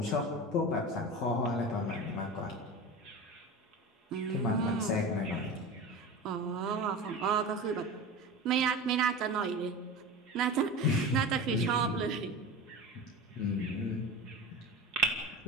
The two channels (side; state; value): both; normal; correlation 0.30